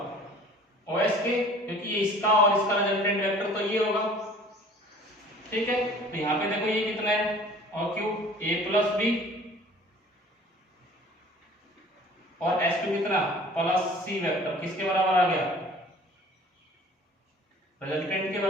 ओ एस के, क्योंकि ये इसका और इसका रिजल्टेंट वेक्टर तो ये होगा, ठीक है। तो यहां पे देखो ये कितना है, O Q A plus B, और एस क्यू कितना प्लस सी वेक्टर, किसके बराबर आ गया, रिजल्टेंट के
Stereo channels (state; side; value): normal; both; correlation 0.49